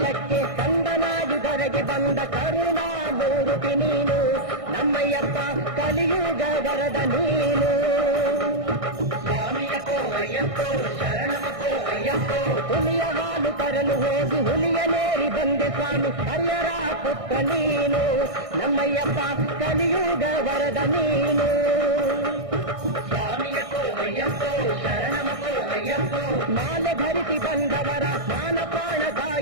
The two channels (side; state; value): left; late; 1.6 ms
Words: ಕಂದನಾಗಿ ಬಂದ ಕರುಣಾಮೂರ್ತಿ ನೀನು ನಮ್ಮಯ್ಯಪ್ಪ ಕಲಿಯುಗ ವರದ ನೀನು ಸ್ವಾಮಿಯಪ್ಪೋ ಅಯ್ಯಪ್ಪೋ ಶರಣಮಪ್ಪೋ ಅಯ್ಯಪ್ಪೋ ಹುಲಿಯ ಹಾಲು ತರಲು ಹೋಗಿ ಹುಲಿಯ ನೇರಿ ಬಂದೆ ಸ್ವಾಮಿ ಹರಿಯರ ಪುತ್ರ ನೀನು ನಮ್ಮಯ್ಯಪ್ಪ ಕಲಿಯುಗ ವರದ ನೀನು ಸ್ವಾಮಿಯಪ್ಪೋ ಅಯ್ಯಪ್ಪೋ ಶರಣಮಪ್ಪೋ ಅಯ್ಯಪ್ಪೋ ಮಾಲೆ ಧರಿಸಿ ಬಂದವರ ಮಾನ ಪ್ರಾಣ